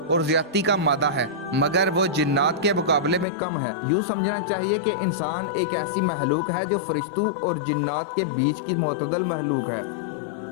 اور زیادتی کا مادہ ہے، مگر وہ جنات کے مقابلے میں کم ہے۔ یوں سمجھنا چاہیے کہ انسان ایک ایسی مخلوق ہے جو فرشتوں اور جنات کے بیچ کی معتدل مخلوق ہے۔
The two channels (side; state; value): right; drops out; at 3.2 s